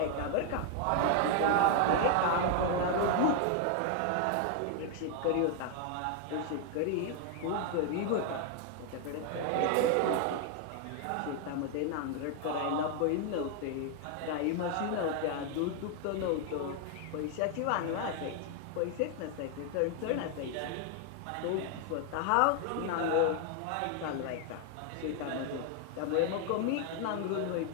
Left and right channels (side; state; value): both; different; correlation 0.00